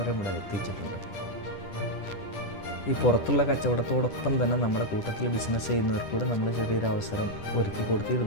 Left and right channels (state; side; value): late; right; 10 ms